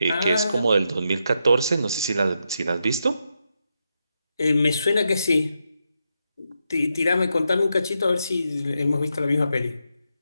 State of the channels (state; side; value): inverted; both; correlation -0.84